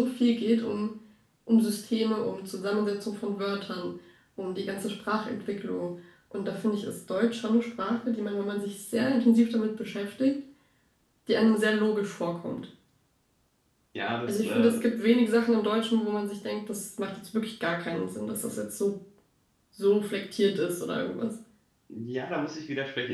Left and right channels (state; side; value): identical; both; correlation 1.00